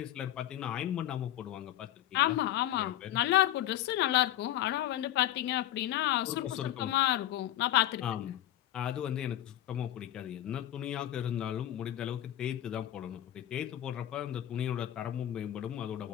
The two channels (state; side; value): quieter; right; 13.1 dB